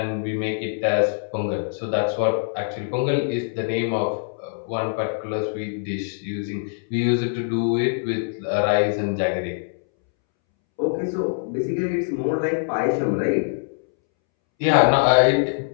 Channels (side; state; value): right; silent; 63 dB below the other